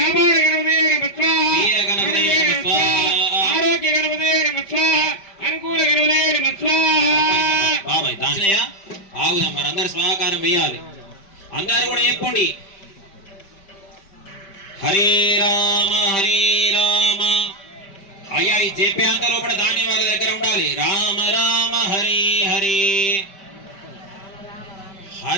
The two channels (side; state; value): right; late; 5.1 ms